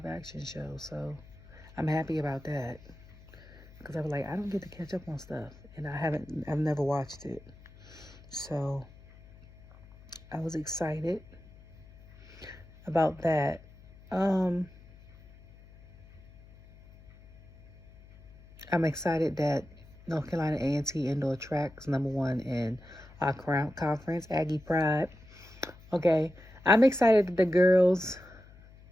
action show. So I'm happy about that. Because I was like, I don't get to catch up on stuff. And I've never watched it. So I was excited about that. I'm excited that North Carolina A&T indoor track's #1 in our conference, Aggie Pride. Okay, I'm excited that the girls,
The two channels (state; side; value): noise; left; hum, 22 dB below the sound